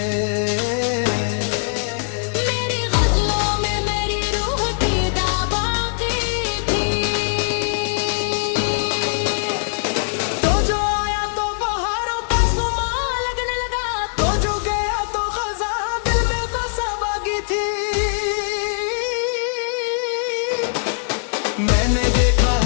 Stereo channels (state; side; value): silent; right; digital silence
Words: मेरी गजलों में मेरी रूह की दाबाकी थी। तो जो आया तो बहारों का सुमा लगने लगा, तो जो गया तो खजा दिल में बसा बागी थी। मैंने देखा